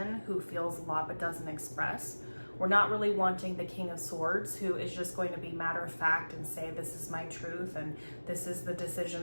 who feels a lot but doesn't express. We're not really wanting the King of Swords who is just going to be matter of fact and say, this is my truth and this is the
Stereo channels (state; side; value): inverted; both; correlation -1.00